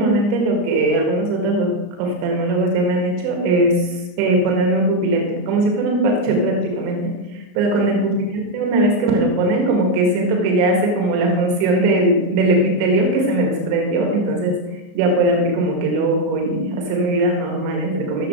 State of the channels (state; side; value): late; left; 34 ms